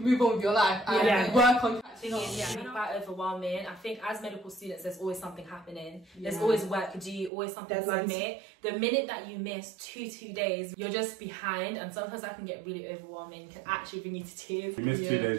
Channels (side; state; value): left; drops out; at 7.3 s